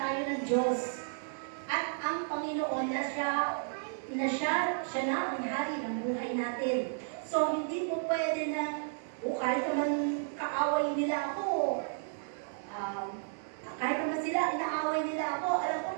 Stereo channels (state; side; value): silent; left; digital silence